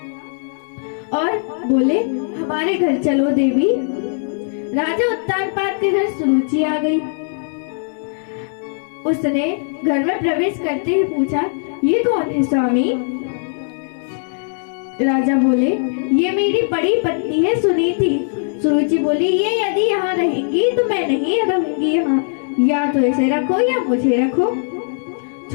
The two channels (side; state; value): right; silent; digital silence